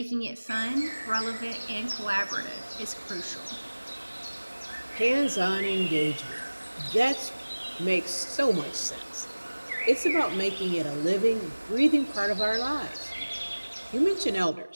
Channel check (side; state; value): both; inverted; correlation -1.00